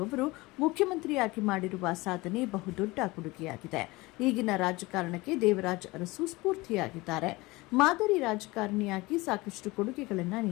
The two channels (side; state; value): right; quieter; 22.0 dB